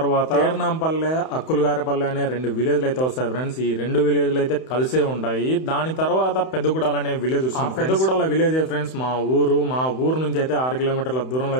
పేర్నాంపల్లె, అక్కులగారిపల్లె అనే 2 విలేజ్లు అయితే వస్తాయి ఫ్రెండ్స్. ఈ 2 విలేజ్లు అయితే కలిసే ఉంటాయి. దాని తర్వాత పెద్దగూడాల అనే విలేజ్ వస్తుంది. పెద్దగూడాల విలేజ్ ఫ్రెండ్స్ మా ఊరు నుంచి అయితే 6 కిలోమీటర్ల దూరంలో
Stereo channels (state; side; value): late; right; 31 ms